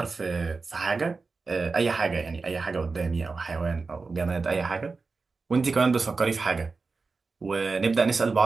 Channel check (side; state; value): left; quieter; 4.2 dB